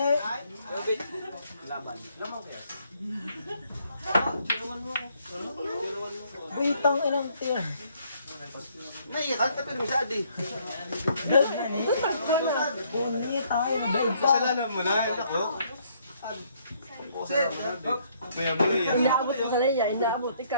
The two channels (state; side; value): inverted; both; correlation -0.67